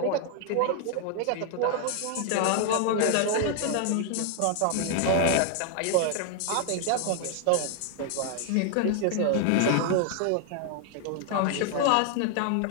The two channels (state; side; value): different; both; correlation 0.00